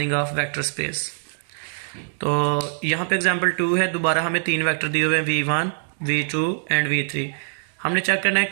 ऑफ वेक्टर स्पेस। तो यहाँ पे एग्जांपल 2 है। दोबारा हमें 3 वेक्टर दिए हुए हैं, v1, v2 एंड v3। हमने चेक करना है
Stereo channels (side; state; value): left; silent; digital silence